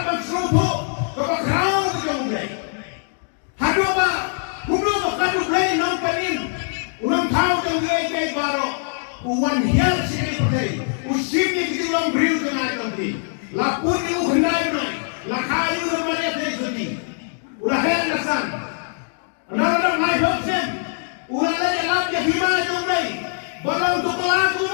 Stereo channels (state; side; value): silent; right; 63 dB below the other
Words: kapag kau dong play, hado ba, kuno ba kanu play nang kanin. Unang tao kang iaid baro, uwan hiyal sini patay, usim ni kita lang beriu dengan nanti, lapun ni uhenday na, Tuhan. Anak-anak mai hopsen. Ulang lagi lap ya hima jom dai. Balang tu kelah